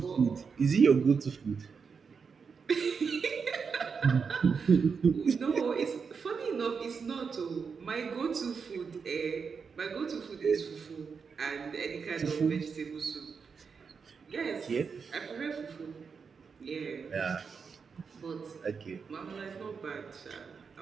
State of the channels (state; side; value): quieter; left; 5.7 dB